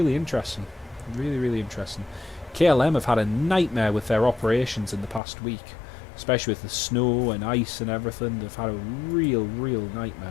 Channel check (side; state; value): right; drops out; at 5.2 s